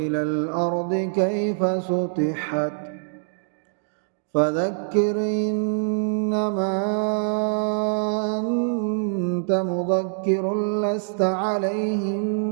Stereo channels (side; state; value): left; silent; digital silence